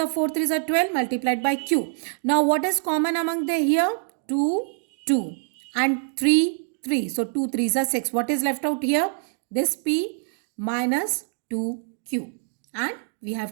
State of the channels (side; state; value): left; silent; 62 dB below the other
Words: 4, 3s are 12 multiplied by q. Now what is common among the here? 2, 2 and 3, 3. So 2 3s are 6. What is left out here? This p minus 2q. And we